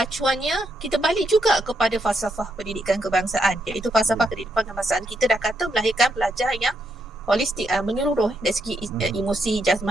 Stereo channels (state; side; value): normal; both; correlation 0.79